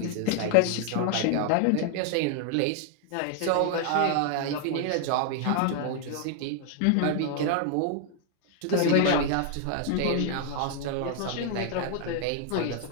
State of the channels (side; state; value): both; different; correlation 0.00